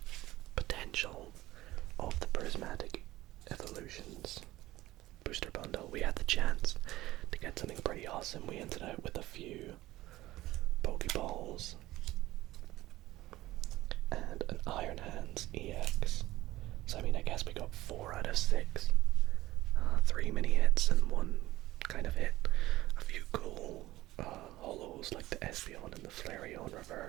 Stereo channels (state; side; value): quieter; left; 16.7 dB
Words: potential of the prismatic evolutions booster bundle. We had the chance to get something pretty awesome. We ended out with a few Pokeballs and an Iron Hands EX. So I mean, I guess we got 4 out of 6. 3 mini hits and 1 kind of hit. A few cool holos like the Espeon and the Flareon